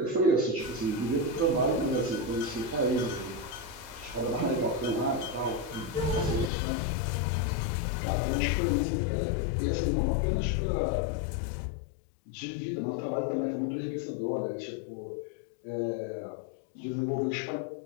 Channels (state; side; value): drops out; right; at 6.5 s